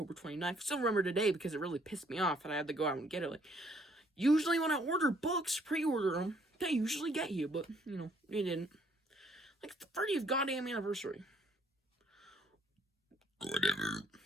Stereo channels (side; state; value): both; normal; correlation 0.65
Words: 29th. I still remember today because it really pissed me off and I had to go out and get it. Like, usually when I order books, pre-order them, they usually get you, but, you know, they didn't. Like, the 30th goddamn anniversary. Whatever.